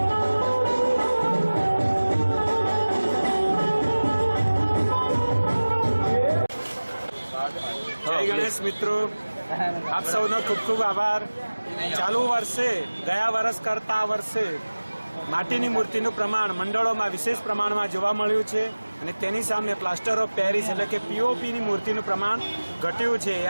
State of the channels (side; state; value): both; inverted; correlation -1.00